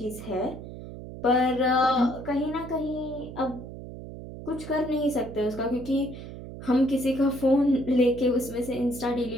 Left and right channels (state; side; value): noise; right; hum, 12 dB below the sound